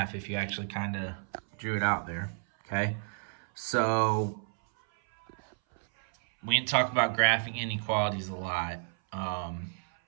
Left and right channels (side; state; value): left; silent; 57 dB below the other